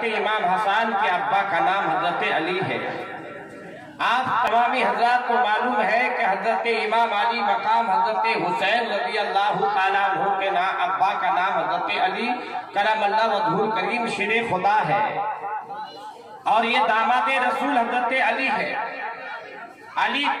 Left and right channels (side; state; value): both; identical; correlation 1.00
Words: امام حسن کے ابا کا نام حضرت علی ہے۔ آپ تمامی حضرات کو معلوم ہے کہ حضرت امام علی مقام حضرت حسین رضی اللہ تعالیٰ عنہ کے ابا کا نام حضرت علی کرم اللہ وجہہ الکریم شیر خدا ہے، اور یہ داماد رسول حضرت علی ہے۔ علی